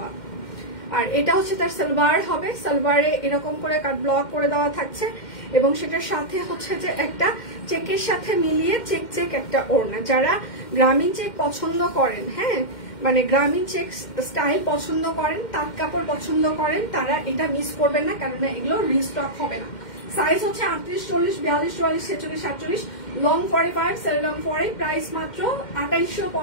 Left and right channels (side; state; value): right; late; 2.1 ms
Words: আর এটা হচ্ছে তার সালোয়ার হবে, সালোয়ারে এরকম করে কাট ব্লক করে দেওয়া থাকছে এবং সেটার সাথে হচ্ছে যে একটা চেকের সাথে মিলিয়ে চেক চেক একটা ওড়না। যারা গ্রামীণ চেক পছন্দ করেন, হ্যাঁ মানে গ্রামীণ চেক স্টাইল পছন্দ করেন, তাঁত কাপড় পছন্দ করেন, তারা এটা মিস করবেন না, কারণ এগুলো রিস্টক হবে না। সাইজ হচ্ছে 38, 40, 42, 44, 46, 48, লং 45, সেল লং 40। প্রাইস মাত্র